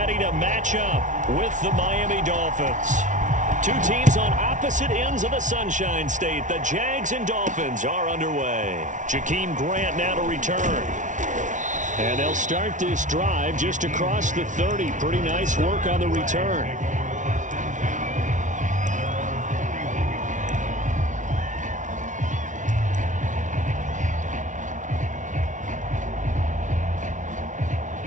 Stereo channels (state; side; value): late; left; 0.37 ms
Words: to match up with the Miami Dolphins. Two teams on opposite ends of the Sunshine State. The Jags and Dolphins are underway. Jakeem Grant now to return. And they'll start this drive just across the 30. Pretty nice work on the return.